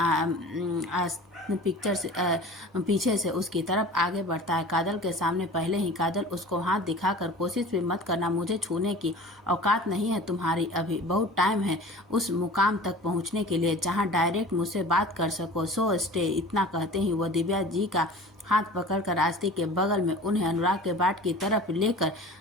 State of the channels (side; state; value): both; normal; correlation 0.40